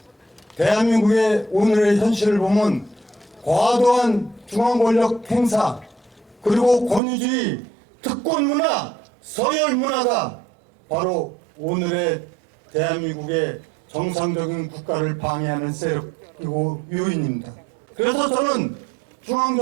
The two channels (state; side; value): drops out; left; at 7.0 s